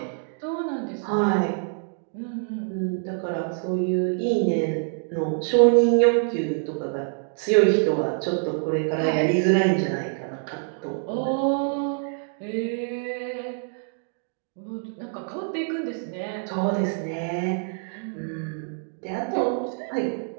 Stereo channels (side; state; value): left; silent; 60 dB below the other